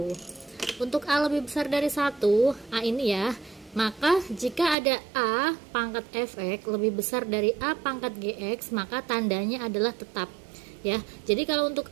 Untuk A lebih besar dari 1, A ini ya, maka jika ada A pangkat fx lebih besar dari A pangkat gx, maka tandanya adalah tetap ya. Jadi kalau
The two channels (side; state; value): left; drops out; at 4.8 s